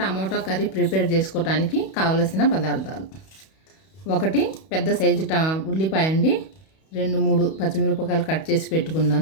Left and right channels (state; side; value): late; right; 31 ms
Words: టమాటో కర్రీ ప్రిపేర్ చేసుకోవడానికి కావలసిన పదార్థాలు: 1 పెద్ద సైజు ఉల్లిపాయ అండి, 2-3 పచ్చిమిరపకాయలు కట్ చేసి